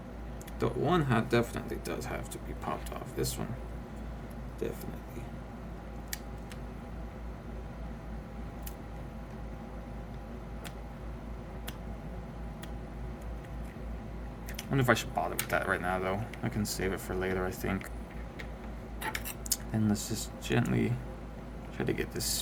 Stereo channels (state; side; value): identical; both; correlation 1.00